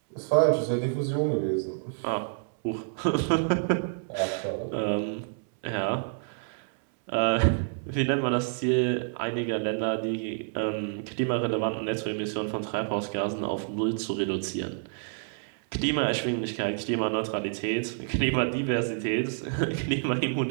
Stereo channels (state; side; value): silent; left; 59 dB below the other